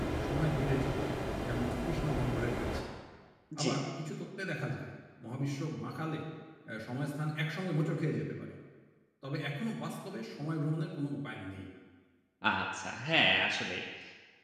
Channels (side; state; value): both; identical; correlation 1.00